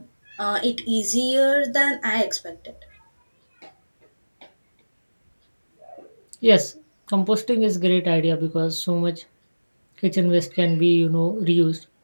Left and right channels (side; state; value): both; inverted; correlation -1.00